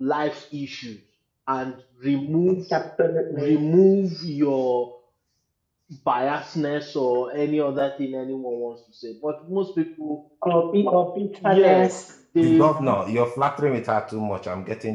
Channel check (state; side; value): identical; both; correlation 1.00